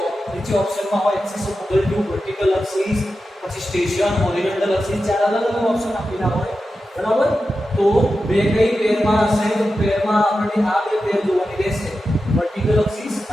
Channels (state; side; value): normal; both; correlation 0.91